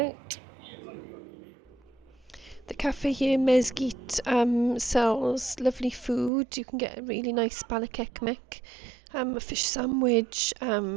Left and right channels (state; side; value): drops out; left; at 6.3 s